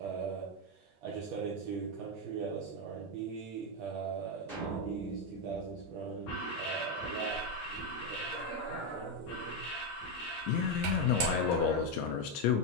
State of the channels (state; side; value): normal; both; correlation 0.05